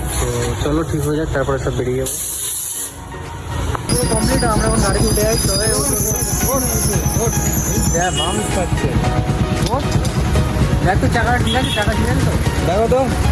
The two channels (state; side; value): identical; both; correlation 1.00